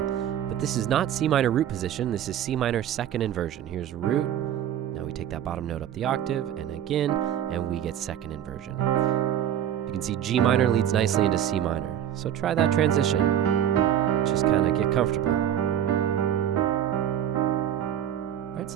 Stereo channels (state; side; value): quieter; left; 10.3 dB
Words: But this is not C minor root position, this is C minor 2nd inversion. Here's root, now we take that bottom note up the octave, and again, and we get 2nd inversion. You can see G minor leads nicely into C minor. So try that transition. Just kind of get comfortable. All right,